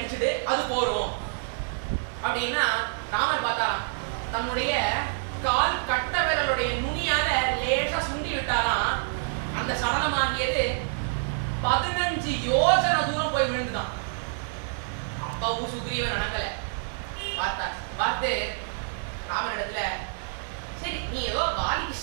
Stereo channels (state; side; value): silent; left; digital silence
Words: அது போறோம் அப்படின்னா ராமர் பார்த்தாராம். தன்னுடைய கால் கட்ட விரலுடைய நுனியால லேசா சுண்டி விட்டாராம். அந்த சடலமாகியது 15 யோஜனை தூரம் போய் விழுந்துதான். அப்பவும் சுக்ரீவன் நடக்கல. பார்த்து ராமனிடத்துல சரி நீ ஏதோ வாலிக்கு